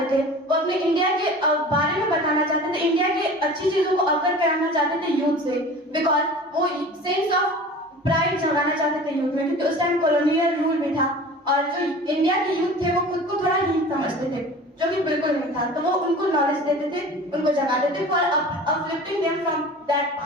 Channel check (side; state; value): both; normal; correlation 0.40